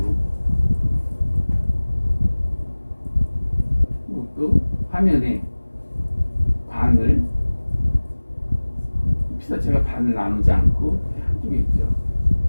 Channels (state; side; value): inverted; both; correlation -1.00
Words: 또 화면에 반을 피사체가 반을 나누지 않고 한쪽에 있죠.